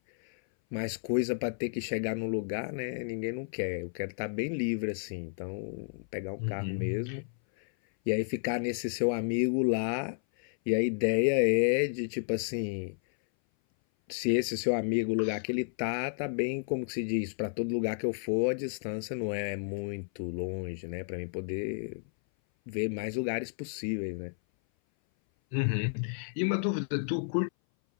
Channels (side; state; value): right; silent; 57 dB below the other